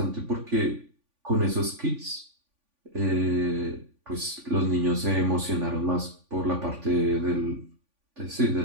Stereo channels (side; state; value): left; late; 3.5 ms